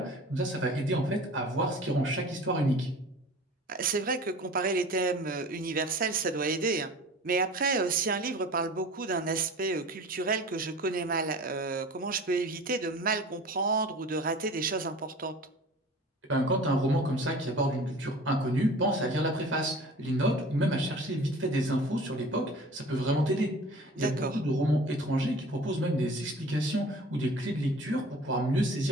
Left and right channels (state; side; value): normal; both; correlation 0.42